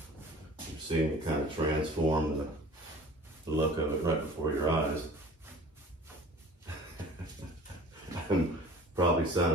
You're seeing it kind of transform the look of it right before your eyes. I'm probably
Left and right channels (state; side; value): normal; both; correlation 0.45